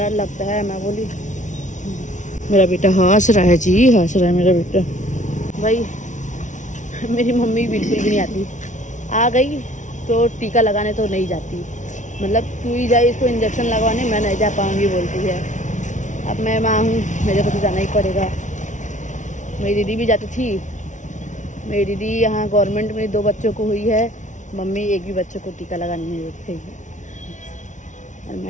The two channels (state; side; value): late; right; 0.36 ms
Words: लगता है। मैं बोली मेरा बेटा हंस रहा है जी, हंस रहा है मेरा बेटा। भाई मेरी मम्मी बिल्कुल भी नहीं आती, आ गई तो टीका लगाने तो नहीं जाती, मतलब तू ही जाए इसको इंजेक्शन लगवाने, मैं नहीं जा पाऊँगी बोलती है। अब मैं माँ हूँ, मेरे को तो जाना ही पड़ेगा। मेरी दीदी भी जाती थी, मेरी दीदी यहाँ गवर्नमेंट में 2 बच्चों को हुई है, मम्मी एक भी बच्चों को टीका लगाने नहीं देती है। और